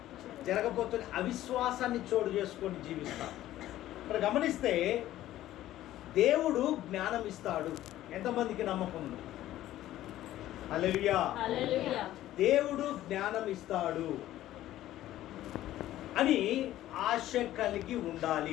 జరగకపోతే అవిశ్వాసాన్ని చోటు చేసుకొని జీవిస్తాం. ఇక్కడ గమనిస్తే దేవుడు జ్ఞానం ఇస్తాడు. ఎంతమందికి నమ్మకం ఉంది? హల్లెలూయా. దేవుడు జ్ఞానం ఇస్తాడు అని ఆశ కలిగి ఉండాలి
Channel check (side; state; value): right; quieter; 14.0 dB